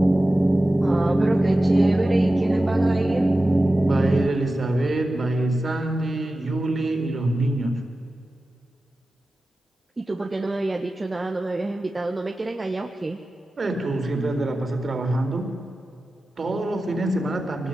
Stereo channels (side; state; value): both; normal; correlation 0.94